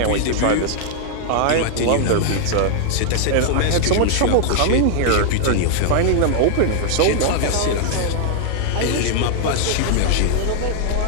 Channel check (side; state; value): both; different; correlation -0.01